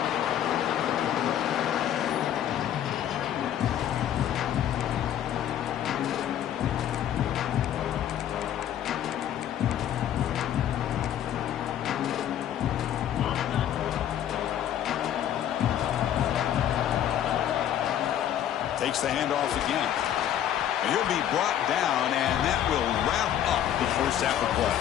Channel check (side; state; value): right; quieter; 10.7 dB